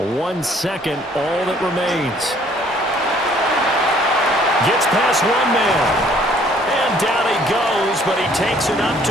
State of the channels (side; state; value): both; normal; correlation 0.60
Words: 1 second, all that remains. Gets past one man. And down he goes, but he takes it up